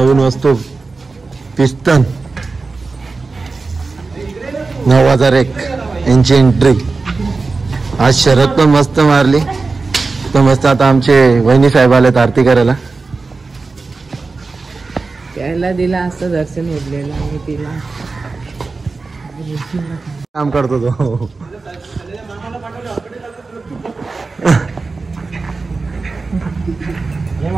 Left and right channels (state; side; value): quieter; left; 4.0 dB